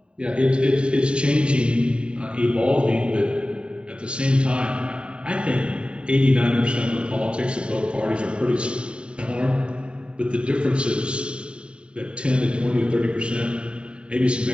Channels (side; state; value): left; late; 0.053 ms